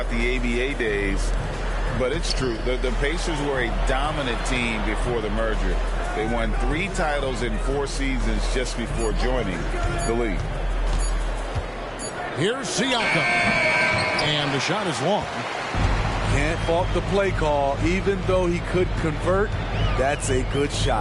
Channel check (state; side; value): identical; both; correlation 1.00